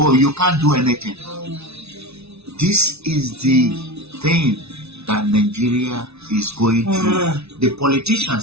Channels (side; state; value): left; late; 0.80 ms